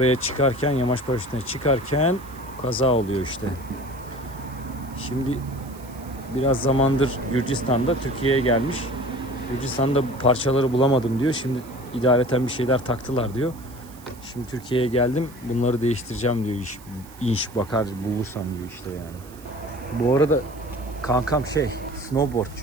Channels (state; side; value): noise; right; hiss, 22 dB below the sound